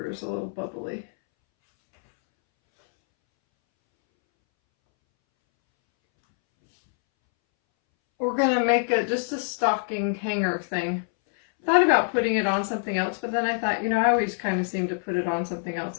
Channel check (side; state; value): right; silent; 62 dB below the other